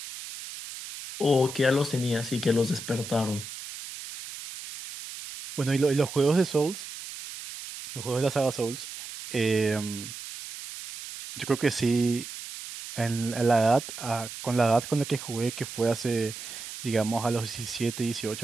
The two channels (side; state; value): right; noise; hiss, 11 dB below the sound